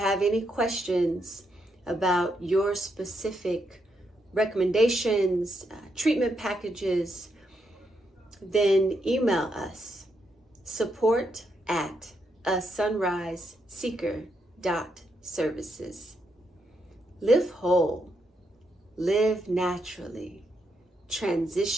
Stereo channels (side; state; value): both; normal; correlation 0.80